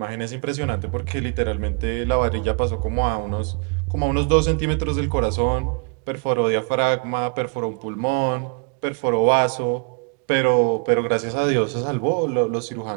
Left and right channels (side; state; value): left; quieter; 37.8 dB